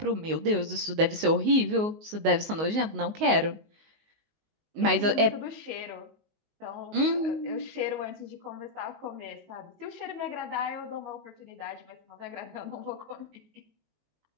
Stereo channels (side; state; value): left; late; 19 ms